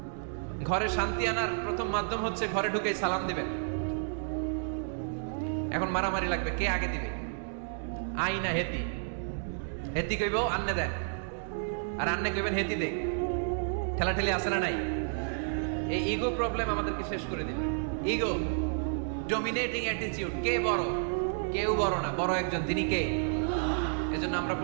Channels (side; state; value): left; silent; digital silence